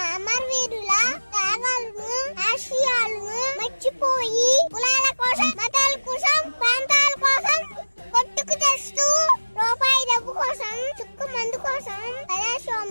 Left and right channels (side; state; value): both; inverted; correlation -1.00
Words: అమరవీరుల త్యాగాలను ఆశయాలను మర్చిపోయి కులాల కోసం మతాల కోసం ప్రాంతాల కోసం కొట్టుకు తెస్తూ రూపాయి డబ్బు కోసం చుక్కు మందు కోసం